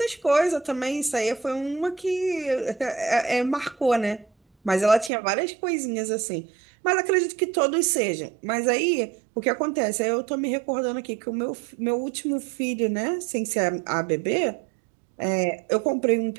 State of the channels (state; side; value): drops out; left; at 5.1 s